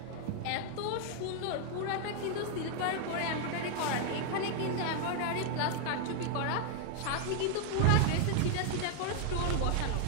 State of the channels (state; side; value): different; both; correlation 0.00